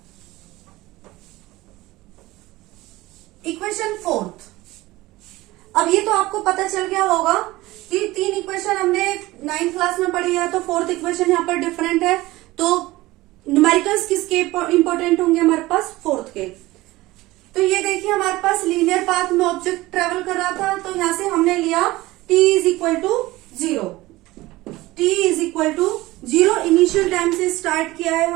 इक्वेशन फोर्थ, अब ये तो आपको पता चल गया होगा कि 3 इक्वेशन हमने 9th क्लास में पढ़ी है, तो फोर्थ इक्वेशन यहाँ पर डिफरेंट है, तो न्यूमेरिकल्स किसके इंपॉर्टेंट होंगे हमारे पास, फोर्थ के। तो ये देखिए हमारे पास लीनियर पाथ में ऑब्जेक्ट ट्रेवल कर रहा था, तो यहां से हमने लिया t is equal to 0। t is equal to 0 initial time से स्टार्ट किया है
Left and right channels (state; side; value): quieter; left; 18.9 dB